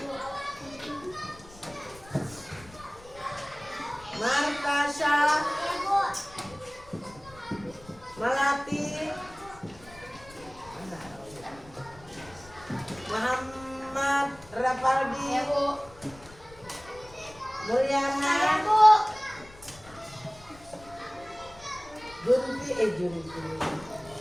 Martasha? Melati? Muhammad Rafaldi? Mulyana? Junti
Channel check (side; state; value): left; noise; rumble, 21 dB below the sound